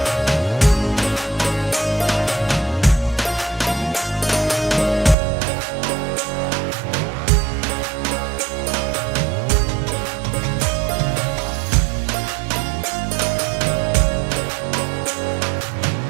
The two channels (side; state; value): left; drops out; at 5.2 s